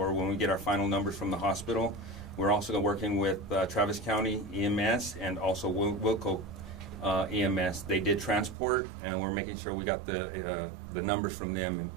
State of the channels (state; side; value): drops out; left; at 8.6 s